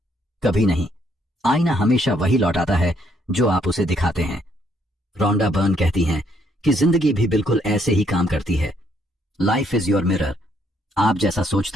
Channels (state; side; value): normal; both; correlation 0.70